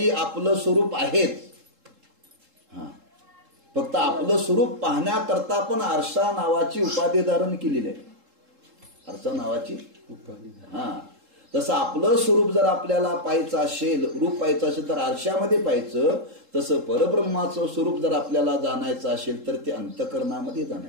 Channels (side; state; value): left; late; 3.7 ms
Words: आपलं स्वरूप आहेच. फक्त आपलं स्वरूप पाहण्याकरता पण आरसा नावाची उपाधी धारण केलेली आहे. आरसा नावाची तसं आपलं स्वरूप जर आपल्याला पाहायचं असेल, रूप पाहायचं असेल तर आरशामध्ये पाहायचं. तसं परब्रह्माचं स्वरूप जर आपल्याला जाणायचं असेल तर ते अंतःकरणामध्ये